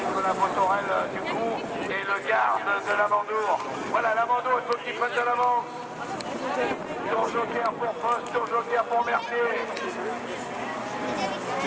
Botorel du coup et le garde de Lamandour. Voilà, Lamandour, il faut qu'il prenne de l'avance. Tour joker pour Poste, tour joker pour Mercier.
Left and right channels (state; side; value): identical; both; correlation 1.00